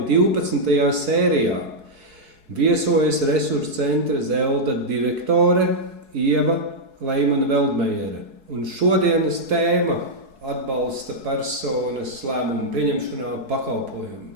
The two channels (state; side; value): late; left; 4.7 ms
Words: 12. sērijā. Viesojas Resursu centra Zelda direktore Ieva Leimane-Veldmejere. Un šodienas tēma atbalsta personas lēmumu pieņemšanā